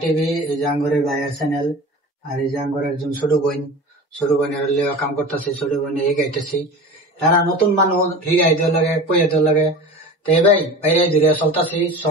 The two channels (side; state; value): both; normal; correlation 0.34